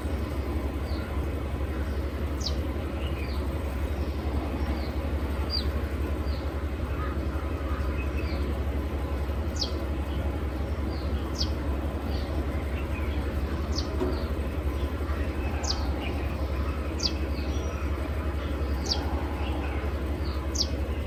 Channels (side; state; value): both; identical; correlation 1.00